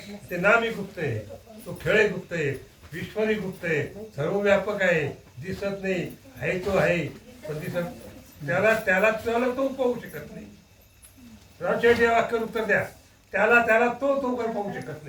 ते नामी गुप्त आहे. तो खेळ गुप्त आहे. ईश्वरी गुप्त आहे. सर्वव्यापक आहे. दिसत नाही आहे तो आहे पण दिसत त्याला तो पाहू शकत नाही. राजशेठी वाक्य उत्तर द्या. त्याला तो काही पाहू शकत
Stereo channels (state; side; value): identical; both; correlation 1.00